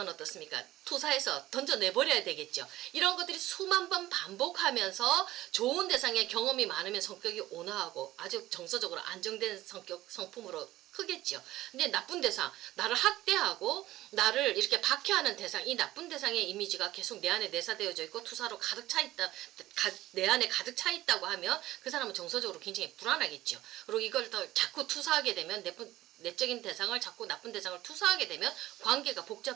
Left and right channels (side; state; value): left; quieter; 15.8 dB